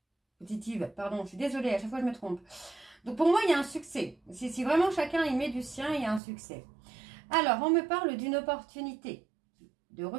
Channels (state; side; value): drops out; left; at 6.2 s